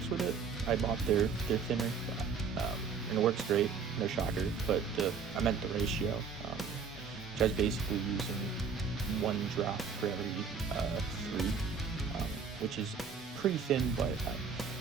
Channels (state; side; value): quieter; left; 5.7 dB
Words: with it. I bought their thinner, and it works great, no shocker, but I meant the ratio, which I was basically using 1 drop for every 3, which is pretty thin, but